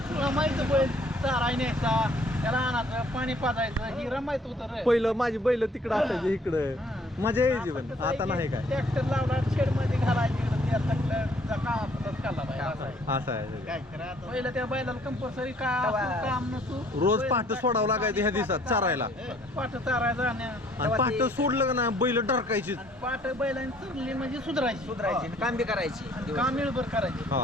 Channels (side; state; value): both; normal; correlation 0.60